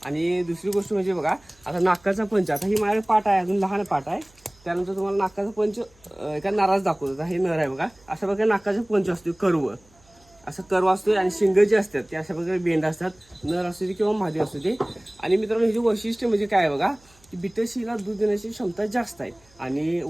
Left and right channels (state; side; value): noise; right; hum, 30 dB below the sound